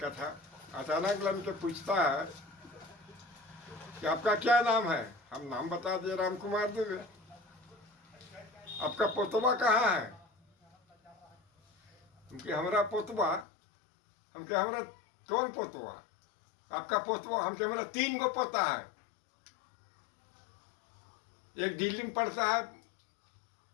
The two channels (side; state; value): right; drops out; at 13.5 s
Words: था। अचानक लाइन पे पूछता है कि आपका क्या नाम है। हम नाम बता दिए, राम कुमार दुबे। आपका पोतवा कहाँ है? हमके हमरा पोतवा। हमके हमरा कौन पोतवा? आपका पोतवा? हमके हमरा 3 गो पोता है। एक दिल्ली में पढ़ता है